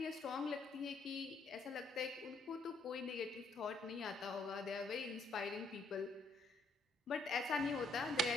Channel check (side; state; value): right; quieter; 3.1 dB